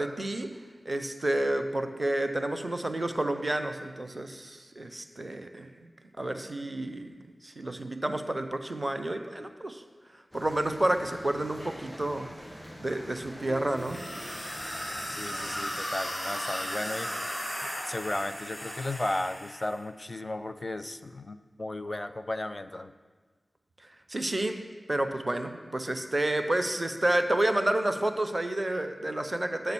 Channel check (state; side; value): normal; both; correlation 0.97